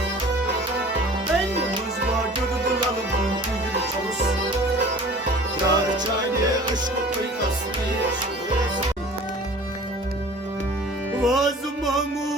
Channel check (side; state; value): both; normal; correlation 0.45